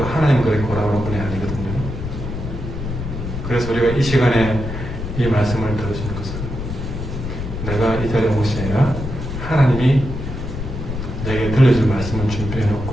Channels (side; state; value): left; noise; rumble, 6 dB below the sound